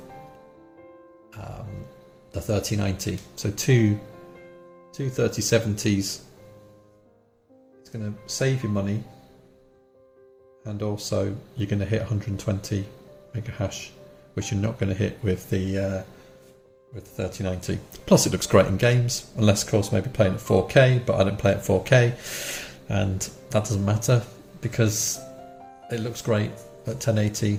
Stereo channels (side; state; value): both; identical; correlation 1.00